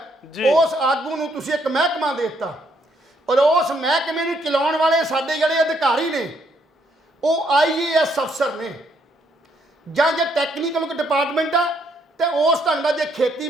ਉਸ ਆਗੂ ਨੂੰ ਤੁਸੀਂ ਇੱਕ ਮਹਿਕਮਾ ਦੇ ਦਿੱਤਾ, ਔਰ ਉਸ ਮਹਿਕਮੇ ਨੂੰ ਚਲਾਉਣ ਵਾਲੇ ਸਾਡੇ ਜਿਹੜੇ ਅਧਿਕਾਰੀ ਨੇ ਉਹ IAS ਅਫਸਰ ਨੇ, ਜਾਂ ਜੇ ਟੈਕਨੀਕਲ ਡਿਪਾਰਟਮੈਂਟ ਆ ਤੇ ਉਸ ਢੰਗ ਦਾ, ਜੇ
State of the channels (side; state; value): both; normal; correlation 0.71